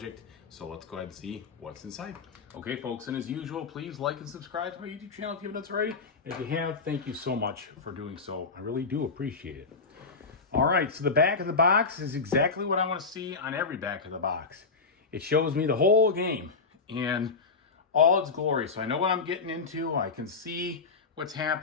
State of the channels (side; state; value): right; quieter; 4.5 dB